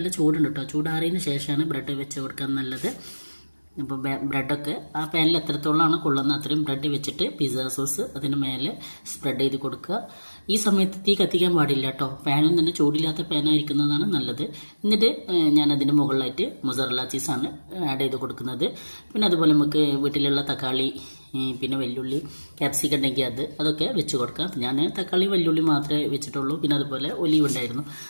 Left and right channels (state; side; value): inverted; both; correlation -1.00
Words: ചൂടുണ്ട് കേട്ടോ. ചൂടാറിയതിന് ശേഷമാണ് ബ്രെഡ് വെച്ച് കൊടുക്കാൻ നല്ലത്. ഇപ്പോൾ ബ്രെഡൊക്കെ ആ പാനിൽ എത്രത്തോളമാണ് കൊള്ളുന്നത് അത്രയും ബ്രെഡ് വെച്ചിട്ട് പിസ്സ സോസ് അതിന് മേലെ സ്പ്രെഡ് ചെയ്ത് കൊടുക്കുക. ഈ സമയത്ത് തീ കത്തിക്കാൻ പാടില്ല കേട്ടോ. പാനും തന്നെ ചൂടില്ലാത്ത പാനായിരിക്കുന്നതാണ് നല്ലത്. എന്നിട്ട് ഞാൻ അതിൻ്റെ മുകളിലായിട്ട് മൊസറല്ല ചീസാണ് ആഡ് ചെയ്ത് കൊടുക്കുന്നത്. പിന്നെ അതുപോലെ നമുക്ക് വീട്ടിലുള്ള തക്കാളി, പിന്നെ വെല്ലുള്ളി, ക്യാപ്സിക്കം ഉണ്ടെങ്കിൽ അതൊക്കെ വെച്ച് കൊടുക്കാം. ഞാൻ തക്കാളി വെല്ലുള്ളി മാത്രമേ വെച്ചിട്ടുള്ളൂ. പിന്നെ അതുപോലെ ഒലിവ് ഉണ്ടായിരുന്നു,